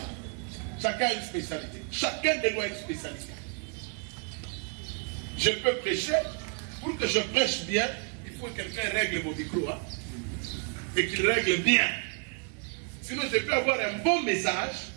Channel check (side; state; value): left; quieter; 39.5 dB